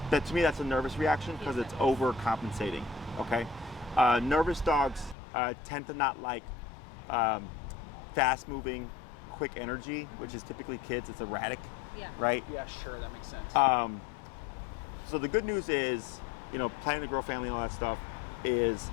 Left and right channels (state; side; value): drops out; right; at 5.2 s